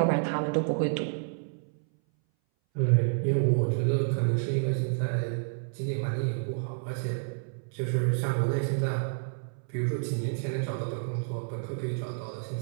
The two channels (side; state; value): left; silent; 58 dB below the other